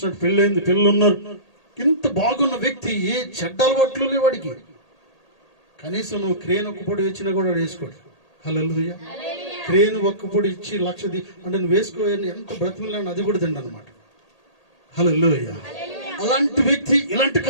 పెళ్ళైంది, పిల్లలు ఉన్నారు. ఇంత బాగున్న వ్యక్తి ఏ చెడ్డ అలవాట్లు లేవు వాడికి. కనీసం నువ్వు క్రేన్ ఒక్కపొడి ఇచ్చినా కూడా వేసుకోడు. హల్లెలూయా. క్రేన్ ఒక్కపొడి ఇచ్చి అంటే నువ్వు వేసుకోని ఎంత బ్రతిమలాని అది కూడా తిండి అనమాట. హల్లెలూయా. అలాంటి వ్యక్తి ఇలాంటి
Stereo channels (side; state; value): right; late; 1.8 ms